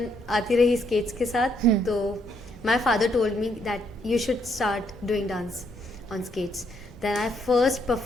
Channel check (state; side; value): normal; both; correlation 0.73